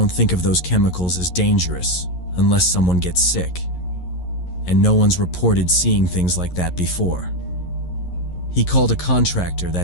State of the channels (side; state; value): right; late; 11 ms